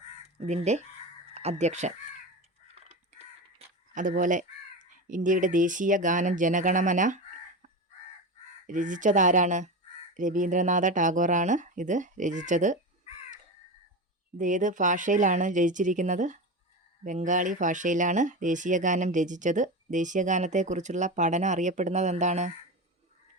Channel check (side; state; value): both; normal; correlation 0.22